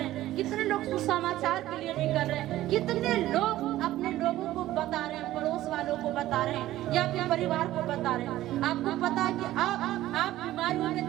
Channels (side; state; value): left; quieter; 14.9 dB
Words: हैं, कितने लोग सुसमाचार के लिए निकल रहे हैं, कितने लोग अपने लोगों को बता रहे हैं, पड़ोस वालों को बता रहे हैं या अपने परिवार को बता रहे हैं। आपको पता है कि आप बीमारियों में